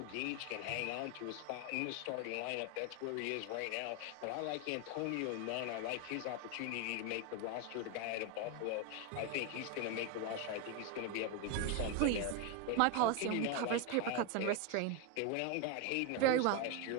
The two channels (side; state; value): both; different; correlation 0.01